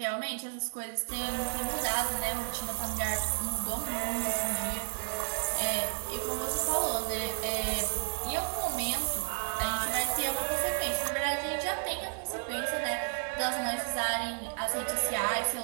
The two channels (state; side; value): silent; left; digital silence